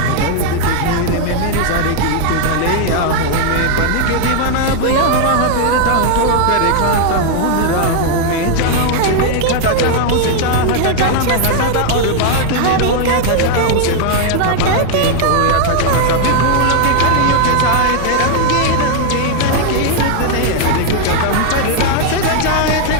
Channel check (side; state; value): both; different; correlation 0.00